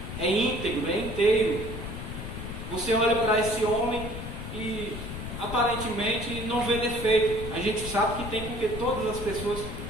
É íntegro, é inteiro. Você olha para esse homem e aparentemente não vê defeito. A gente sabe que tem, porque todas as pessoas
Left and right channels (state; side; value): noise; left; rumble, 7 dB below the sound